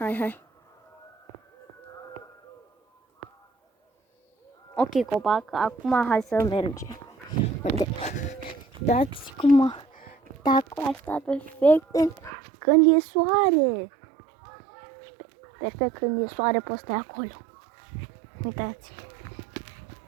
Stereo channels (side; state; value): left; drops out; at 12.3 s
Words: Ok, copac, acum hai să mergem. Dați cum tacul asta perfect când e soare. Perfect când e soare poți sta acolo. Uitați.